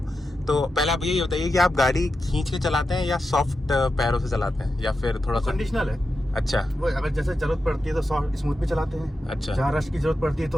तो पहले आप ये बताइए कि आप गाड़ी खींच के चलाते हैं या सॉफ्ट पैरों से चलाते हैं या फिर थोड़ा सा कंडीशनल है? अच्छा, वो अगर जैसे जरूरत पड़ती है तो सॉफ्ट स्मूथ भी चलाते हैं। अच्छा। जहाँ रश की जरूरत पड़ती है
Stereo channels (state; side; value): normal; both; correlation 0.89